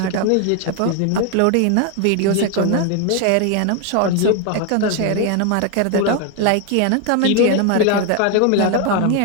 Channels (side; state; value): both; different; correlation 0.01